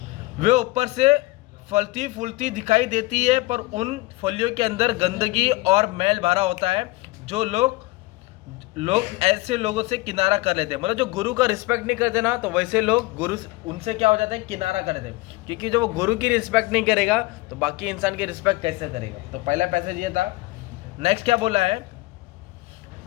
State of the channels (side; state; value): right; quieter; 21.2 dB